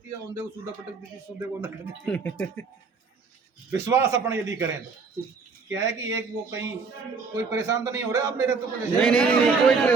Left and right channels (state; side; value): quieter; left; 4.8 dB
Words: है, औंधे को सूदा पटक देती है, सूदे को न कर देती है। विश्वास अपन यदि करें तो क्या है कि एक वो कहीं कोई परेशान तो नहीं हो रहा आप मेरे, तो नहीं कोई